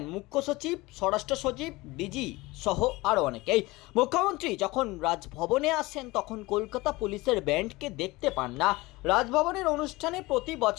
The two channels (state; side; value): quieter; right; 21.3 dB